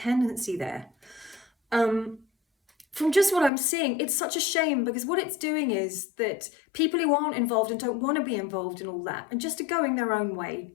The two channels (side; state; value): right; drops out; at 3.5 s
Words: there. From just what I'm seeing, it's such a shame, because what it's doing is that people who aren't involved and don't want to be involved in all that, and just are going their own way